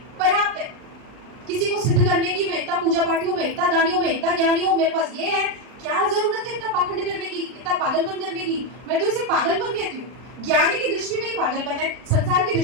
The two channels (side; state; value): left; late; 39 ms